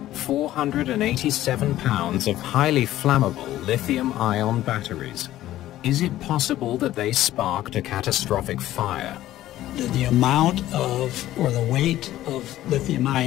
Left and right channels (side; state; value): right; quieter; 14.2 dB